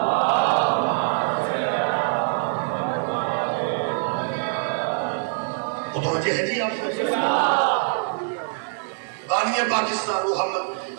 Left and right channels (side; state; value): left; silent; digital silence